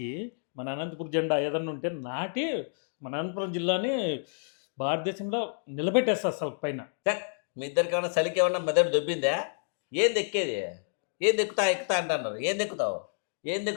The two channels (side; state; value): right; silent; digital silence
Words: మన అనంతపురం జెండా ఏదన్నా ఉంటే నాటి మన అనంతపురం జిల్లాని భారతదేశంలో నిలబెట్టేస్తా అసలు పైన. మీ ఇద్దరికి ఏమన్నా చలికి ఏమన్నా మెదడు దొబ్బిందా? ఏం దెక్కేది? ఏం ఎక్కుతా అంటున్నారు. ఏం